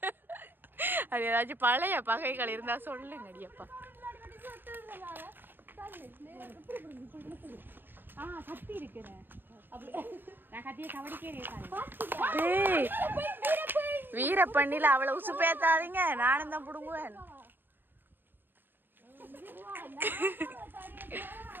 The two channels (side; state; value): left; late; 0.095 ms